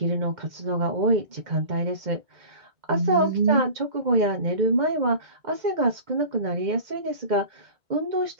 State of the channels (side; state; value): left; late; 2.1 ms